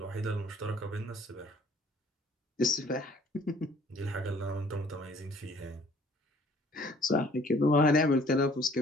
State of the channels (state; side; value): normal; both; correlation 0.56